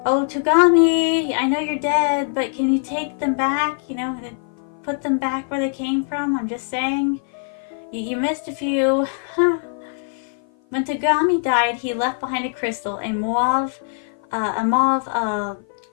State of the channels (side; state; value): right; silent; 55 dB below the other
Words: Oh, Togami, I know you're dead, but can you take them back? You know, put them back where they came from? I'm just saying. You missed a few. When Togami died, he left behind a crystal, a mauve